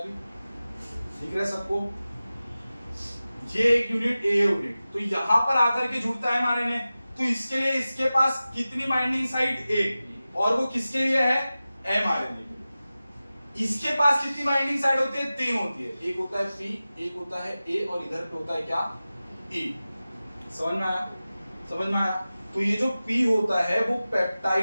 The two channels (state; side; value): inverted; both; correlation -0.95